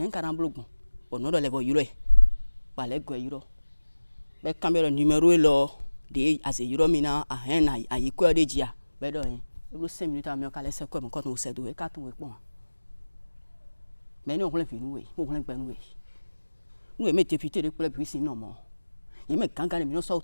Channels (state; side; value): inverted; both; correlation -1.00